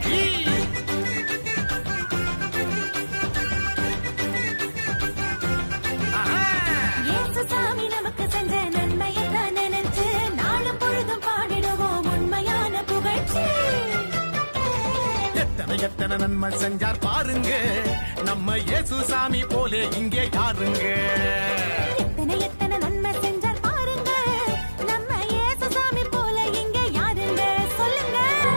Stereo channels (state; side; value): inverted; both; correlation -1.00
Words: இயேசு சாமி நமக்கு செஞ்ச நன்மையெல்லாம் நினைச்சு நாளும் பொழுதும் பாடிடுவோம் உண்மையான புகழ்ச்சி. எத்தனை எத்தனை நன்மை செஞ்சார் பாருங்க நம்ம இயேசு சாமி போலே இங்கே யாருங்க.